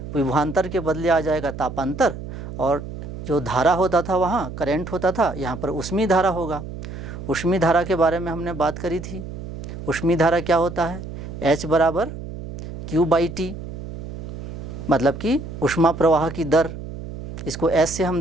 विभवांतर के बदले आ जाएगा तापांतर, और जो धारा होता था वहाँ करंट होता था, यहाँ पर ऊष्मीय धारा होगा। ऊष्मीय धारा के बारे में हमने बात करी थी। ऊष्मीय धारा क्या होता है? H बराबर Q/T, मतलब कि ऊष्मा प्रवाह की दर, इसको S से हम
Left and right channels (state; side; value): noise; right; hum, 10 dB below the sound